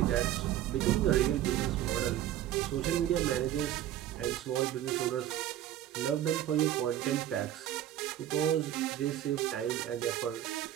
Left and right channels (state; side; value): quieter; left; 12.2 dB